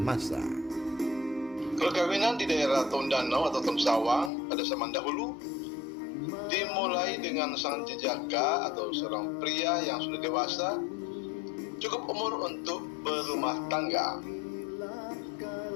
Perkawinan di daerah Tondano atau Tonsawang pada zaman dahulu dimulai dengan sang jejaka atau seorang pria yang sudah dewasa, cukup umur untuk berumah tangga.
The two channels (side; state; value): right; drops out; at 4.3 s